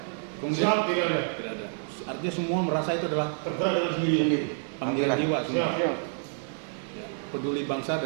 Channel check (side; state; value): left; silent; 59 dB below the other